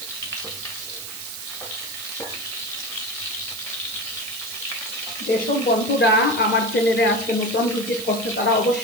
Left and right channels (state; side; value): noise; right; hiss, 10 dB below the sound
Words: যেসব বন্ধুরা আমার চ্যানেলে আজকে নতুন ভিজিট করছে তারা